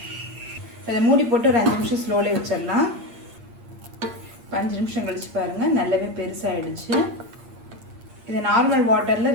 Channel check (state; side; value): late; left; 8.6 ms